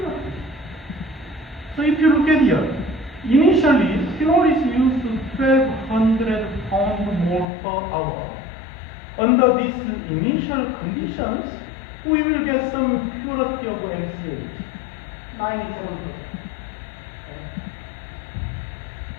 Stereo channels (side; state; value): right; drops out; at 7.5 s